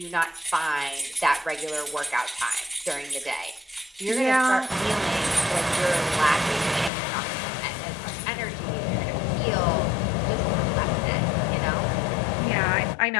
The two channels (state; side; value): drops out; right; at 6.9 s